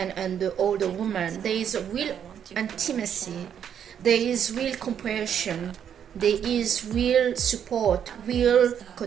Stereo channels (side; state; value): left; quieter; 8.7 dB